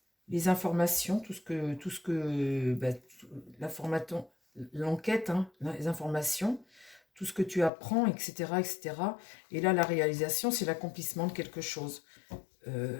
les informations, l'information, l'enquête, hein, les informations, tout ce que tu apprends, etc., etc. Et là, la réalisation, c'est l'accomplissement de quelque chose.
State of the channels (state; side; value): drops out; right; at 7.7 s